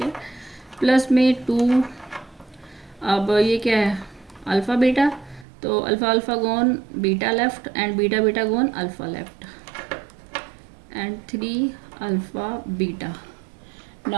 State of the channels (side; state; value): left; drops out; at 5.5 s